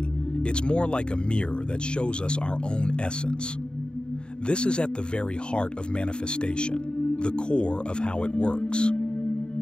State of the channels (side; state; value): right; late; 0.050 ms